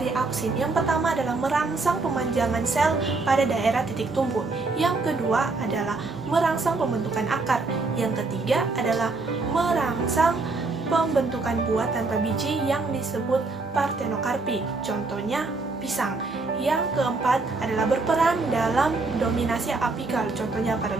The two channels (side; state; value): left; quieter; 3.7 dB